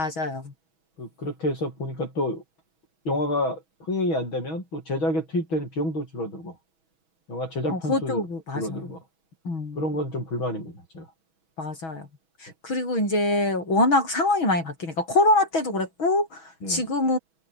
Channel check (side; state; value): right; late; 6.2 ms